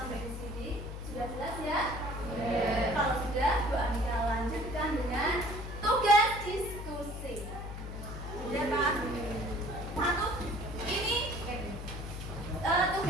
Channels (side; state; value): left; noise; hum, 8 dB below the sound